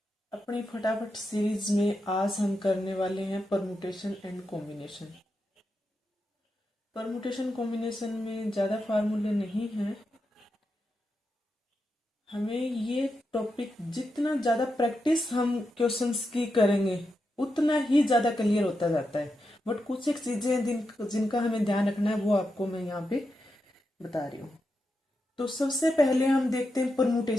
अपनी फटाफट सीरीज में आज हम करने वाले हैं permutation and combination. Permutation combination में ज़्यादा फार्मूले नहीं हैं। हमें ये टॉपिक जितना ज़्यादा प्रैक्टिस हम क्वेश्चंस की करेंगे उतना ही ज़्यादा क्लियर होता जाता है। बट कुछ एक चीज़ें जिनका हमें ध्यान रखना है वो आपको मैं यहाँ पे बता रही हूँ। तो सबसे पहले हम देखते हैं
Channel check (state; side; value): normal; both; correlation 0.87